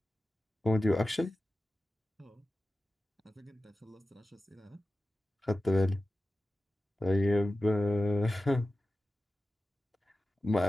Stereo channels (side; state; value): both; normal; correlation 0.95